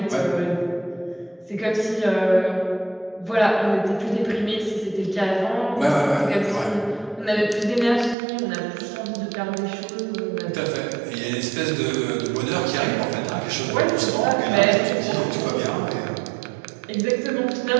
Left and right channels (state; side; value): drops out; left; at 8.2 s